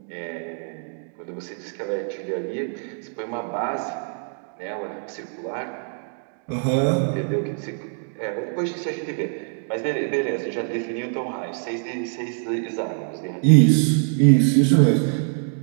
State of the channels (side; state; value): left; silent; 58 dB below the other